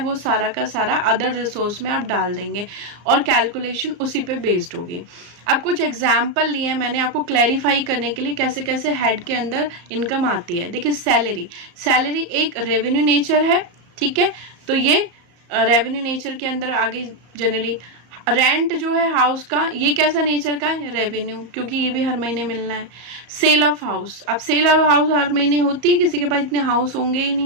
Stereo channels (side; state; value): left; late; 34 ms